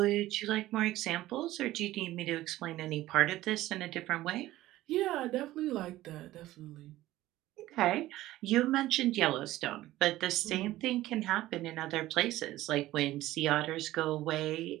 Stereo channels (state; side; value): quieter; left; 15.8 dB